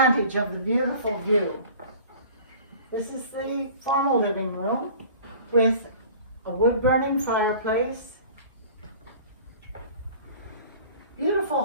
of the beautiful view. This is the formal living room with a wood-burning fireplace, beautiful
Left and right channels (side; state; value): both; inverted; correlation -0.45